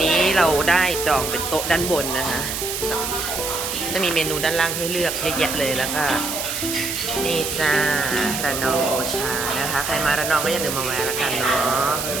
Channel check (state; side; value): noise; right; hiss, 4 dB below the sound